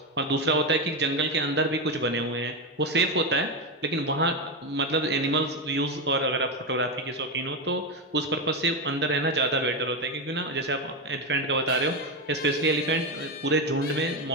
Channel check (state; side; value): normal; both; correlation 0.11